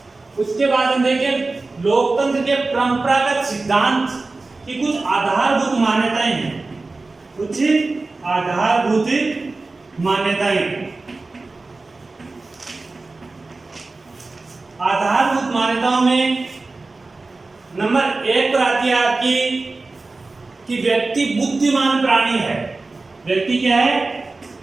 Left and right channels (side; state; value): left; quieter; 3.5 dB